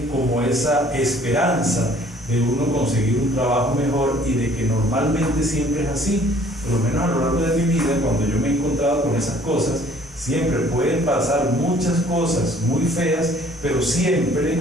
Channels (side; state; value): both; normal; correlation 0.56